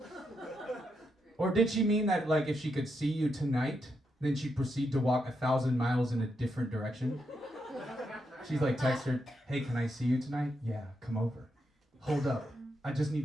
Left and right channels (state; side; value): normal; both; correlation 0.82